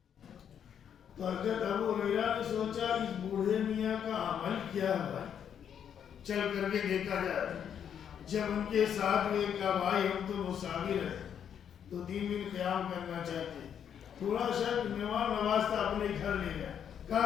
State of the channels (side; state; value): right; quieter; 8.5 dB